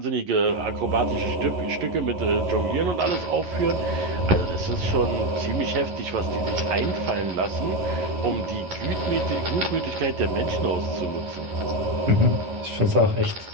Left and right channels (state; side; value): late; left; 11 ms